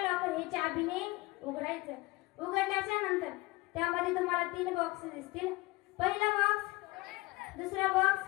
लॉकर हे चाबीने उघडायचं. उघडल्याच्या नंतर त्यामध्ये तुम्हाला 3 बॉक्स दिसतील. पहिला बॉक्स, दुसरा बॉक्स,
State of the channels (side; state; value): right; quieter; 21.9 dB